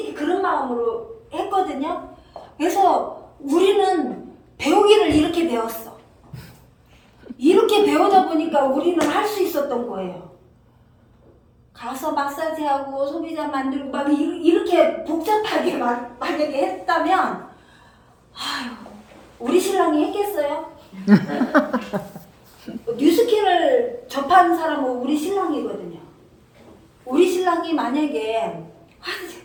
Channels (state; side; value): identical; both; correlation 1.00